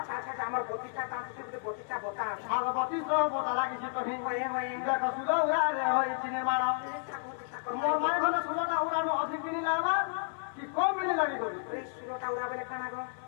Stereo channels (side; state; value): right; silent; 56 dB below the other